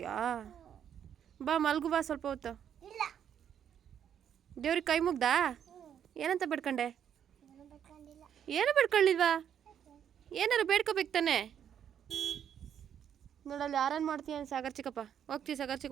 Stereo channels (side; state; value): left; quieter; 9.0 dB